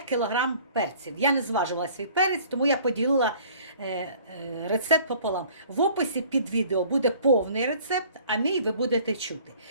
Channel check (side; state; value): both; inverted; correlation -0.52